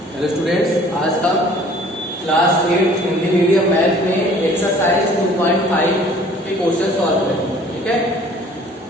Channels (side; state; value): both; normal; correlation 0.52